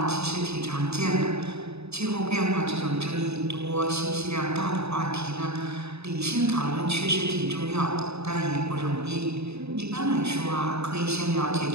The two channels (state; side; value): late; left; 0.80 ms